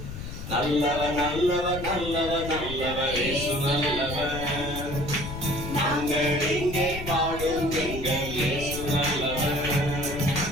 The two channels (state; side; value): noise; left; rumble, 9 dB below the sound